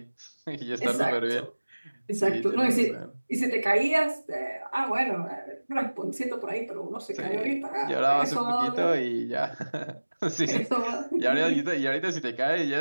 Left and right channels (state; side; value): inverted; both; correlation -1.00